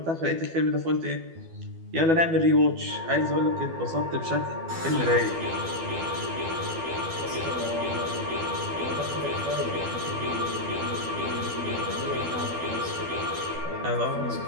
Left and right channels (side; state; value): left; late; 12 ms